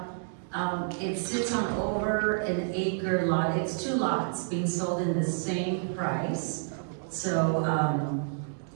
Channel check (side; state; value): left; silent; digital silence